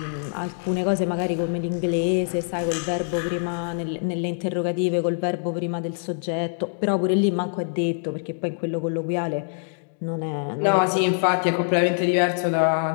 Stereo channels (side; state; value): right; silent; digital silence